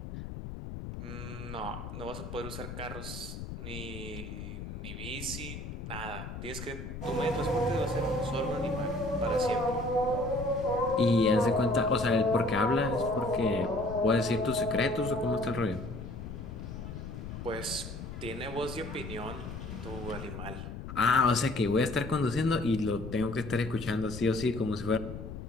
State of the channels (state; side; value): noise; left; rumble, 9 dB below the sound